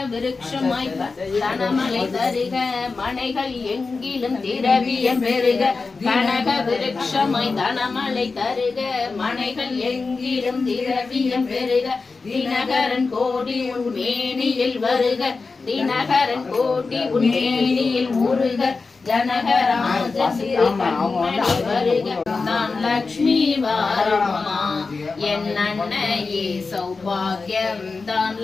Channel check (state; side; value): quieter; right; 4.2 dB